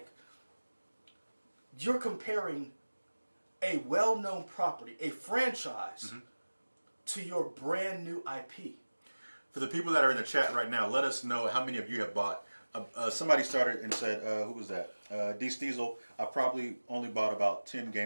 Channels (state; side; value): inverted; both; correlation -1.00